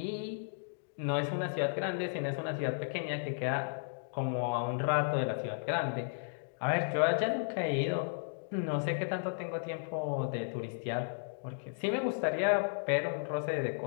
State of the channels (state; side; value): silent; right; digital silence